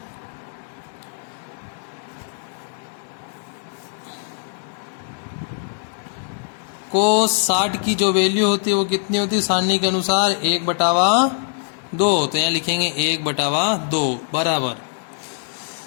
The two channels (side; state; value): right; silent; digital silence